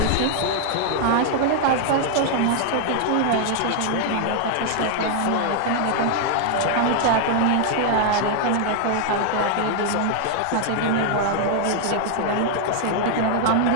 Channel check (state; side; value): different; both; correlation 0.00